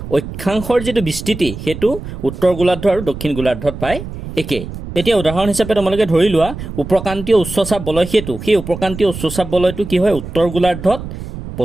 অক্ষাংশৰ যিটো বিস্তৃতি সেইটো উত্তৰ গোলাৰ্ধ আৰু দক্ষিণ গোলাৰ্ধত প্ৰায় একেই। এতিয়া উদাহৰণ হিচাপে তোমালোকে ধৰি লোৱা উপক্ৰান্তীয় উচ্চচাপ বলয় সেইটো, সেই উপক্ৰান্তীয় উচ্চচাপ বলয়টো কি হয়, উত্তৰ গোলাৰ্ধত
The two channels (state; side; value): noise; right; rumble, 10 dB below the sound